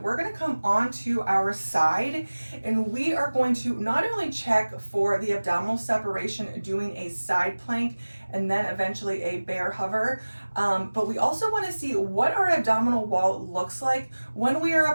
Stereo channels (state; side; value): inverted; both; correlation -1.00